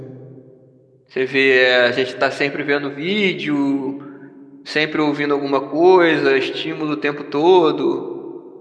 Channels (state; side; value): identical; both; correlation 1.00